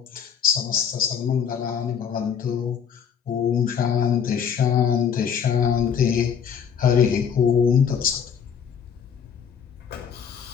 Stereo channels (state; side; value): quieter; right; 7.4 dB